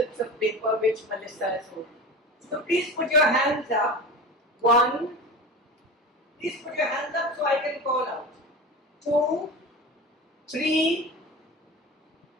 of paper which Melissa has holding. So please put your hands up. 1. Please put your hands up so I can call out. 2, 3.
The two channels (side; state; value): both; normal; correlation 0.30